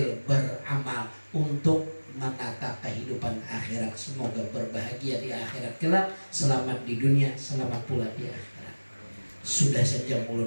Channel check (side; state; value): both; inverted; correlation -1.00